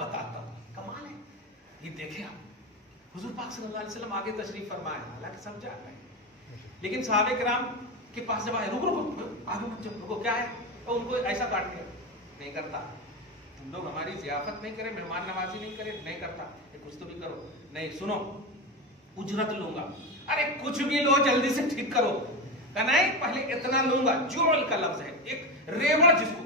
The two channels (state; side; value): normal; both; correlation 0.18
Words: بتاتا ہوں، کمال ہے یہ، دیکھیں آپ حضور پاک صلی اللہ علیہ وسلم آگے تشریف فرمائے، حالانکہ سمجھا ہے، لیکن صحابہ کرام کے پاس جب آئے، رکو آگے مت جاؤ، رکو کیا ہے، تو ان کو ایسا کاٹ دیا، نہیں کرتا، تم لوگ ہماری ضیافت نہیں کرے، مہمان نوازی نہیں کرے، نہیں کرتا، کچھ تو بھی کرو، نہیں سنو اجرت لوں گا، ارے کچھ بھی لو جلدی سے ٹھیک کرو، کہ نہیں پہلے اتنا لوں گا۔ جعل کا لفظ ہے، ایک ریوڑ جس کو